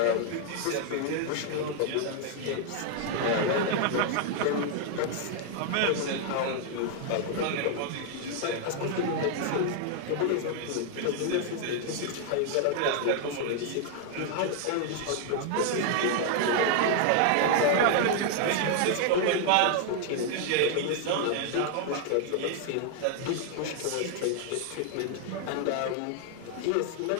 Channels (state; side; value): different; both; correlation 0.00